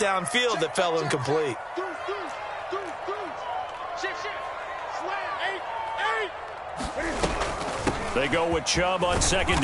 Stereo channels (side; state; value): both; identical; correlation 1.00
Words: that fell incomplete. They go with Chubb on second